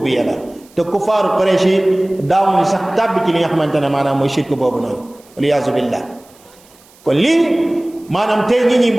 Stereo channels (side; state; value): right; noise; hiss, 28 dB below the sound